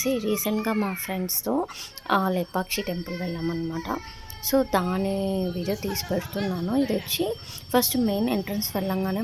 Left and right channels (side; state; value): both; identical; correlation 1.00